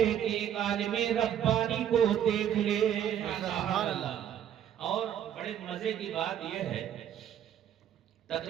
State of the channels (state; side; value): quieter; left; 9.9 dB